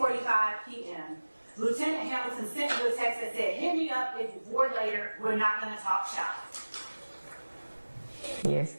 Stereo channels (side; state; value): both; inverted; correlation -1.00